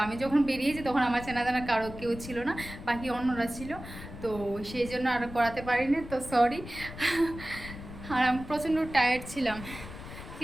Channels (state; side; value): noise; left; rumble, 12 dB below the sound